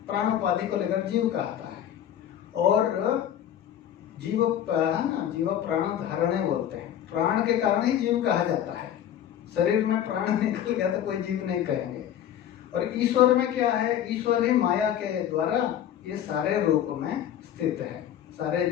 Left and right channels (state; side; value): quieter; right; 10.4 dB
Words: प्राण उपाधि को लेकर जीव कहता है। और जीव जीव प्राण धारणे बोलते हैं, प्राण के कारण ही जीव कहा जाता है। शरीर में प्राण निकल गया तो कोई जीव नहीं कहेंगे। और ईश्वर में क्या है, ईश्वर ही माया के द्वारा ये सारे रूप में स्थित है। सारे